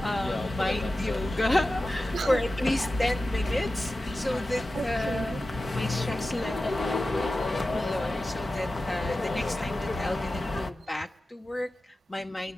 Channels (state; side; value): normal; both; correlation 0.94